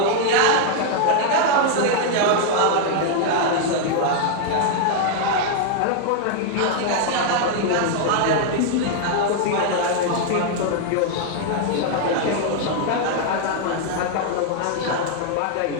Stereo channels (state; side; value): different; both; correlation 0.00